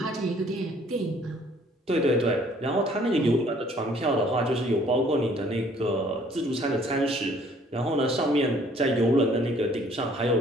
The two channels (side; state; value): both; normal; correlation 0.59